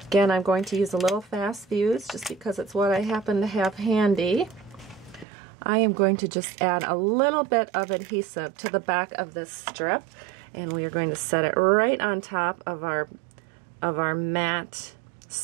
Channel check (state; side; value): drops out; left; at 5.2 s